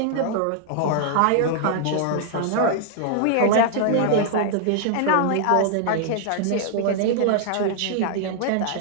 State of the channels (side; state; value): both; different; correlation -0.01